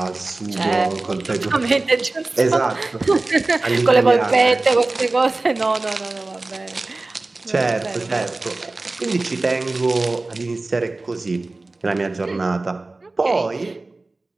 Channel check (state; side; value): quieter; left; 3.2 dB